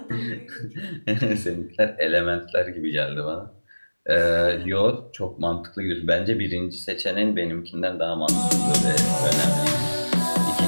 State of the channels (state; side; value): inverted; both; correlation -1.00